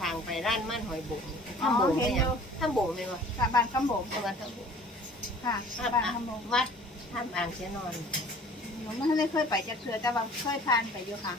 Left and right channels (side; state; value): both; normal; correlation 0.49